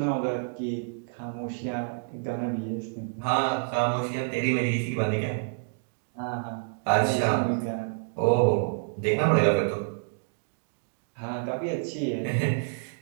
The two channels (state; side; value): silent; left; digital silence